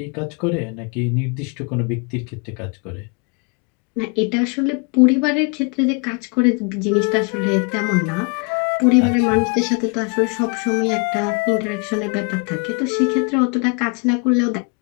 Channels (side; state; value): right; quieter; 33.4 dB